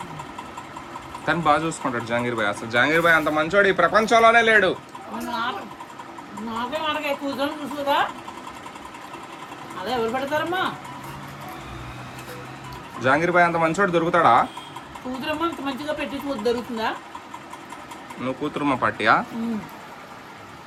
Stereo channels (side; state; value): both; identical; correlation 1.00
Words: తను బాగా చూసుకుంటాడు జంగీర్ భాయ్. అసలు జంగీర్ భాయ్ అంత మంచోడు ఈ ప్రపంచంలోనే లేడు. జంగీర్ భాయ్ అంత మంచోడు దొరుకుతాడా? నువ్వు కూతురుమ్మ పార్టీయా?